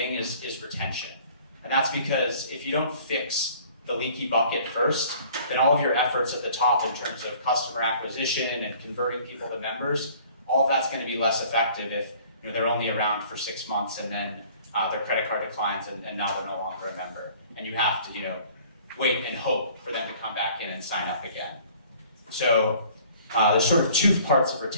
is retention. And that's because if you don't fix the leaky bucket first, then all of your efforts at the top in terms of customer acquisition and converting people to members, all of that's going to be less effective if they're only around for 6 months and then their credit card declines and now they're no longer a member. And you have to wait and hope for them to come back in and sign up again. So there's sort of 2 parts of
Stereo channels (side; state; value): both; inverted; correlation -0.52